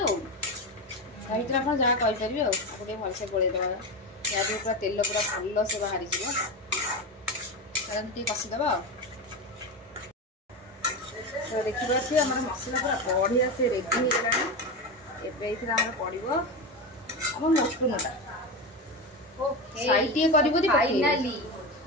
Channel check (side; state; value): both; normal; correlation 0.19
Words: ଆଉ। ତା ଭିତରେ ଆପଣ ଯାହା କହିପାରିବେ ଆଉ। ତାକୁ ଟିକେ ଭଲସେ ଗୋଳେଇଦେବା। ଯାହାଦ୍ୱାରା ପୁରା ତେଲ ପୁରା ଭଲସେ ବାହାରିଯିବ। ଟିକେ କଷିଦେବା ଆଉ। ତ ଦେଖିପାରୁଥିବେ ଆମର ମସଲା ପୁରା ବଢ଼ିଆ ସେ ରେଡି ହେଇଗଲାଣି। ଏବେ ଏଇଥିରେ ଆମର ପଡ଼ିବ ଆମ ମଟନଟା। ସାଇଡ୍ ଟିକେ କରିବୁ ଯଦି